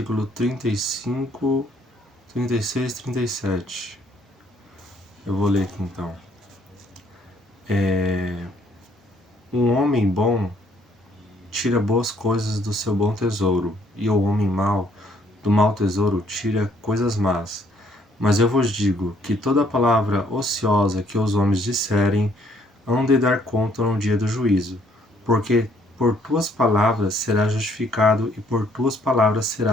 35, 36 e 37. Eu vou ler aqui então. Um homem bom tira boas coisas do seu bom tesouro, e o homem mau do mau tesouro tira coisas más. Mas eu vos digo que toda palavra ociosa que os homens disserem, hão de dar conta no dia do juízo, porque por tuas palavras serás justificado e por tuas palavras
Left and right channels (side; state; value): both; normal; correlation 0.66